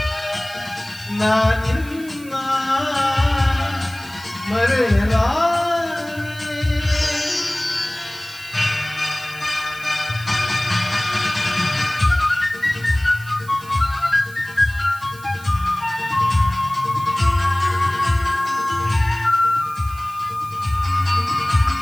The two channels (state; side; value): noise; right; hiss, 20 dB below the sound